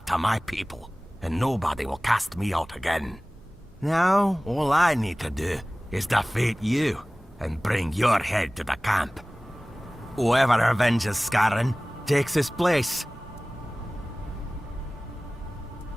to my people, and nobody will cast me out again. Now, all I need to do is defeat you, and bring your head to the camp. Whoever avenges Scarran takes his place.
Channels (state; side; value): normal; both; correlation 0.98